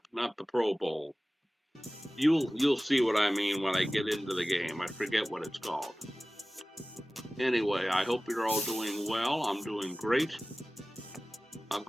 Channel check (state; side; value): normal; both; correlation 0.97